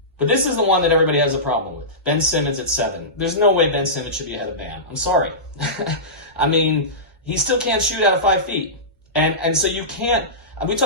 But this is the one that everybody has a problem with. Ben Simmons at 7. There's no way Ben Simmons should be ahead of Bam. I'm sorry. I mean, he still can't shoot out of 5 feet. And so you can't, we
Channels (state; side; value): normal; both; correlation -0.19